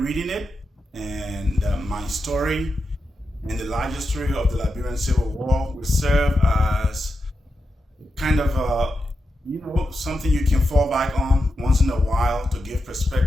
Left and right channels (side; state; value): both; normal; correlation 0.89